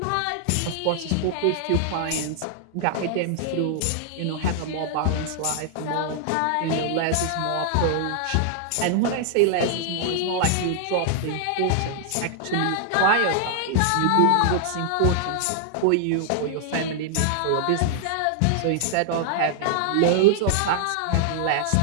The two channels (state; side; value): different; both; correlation -0.01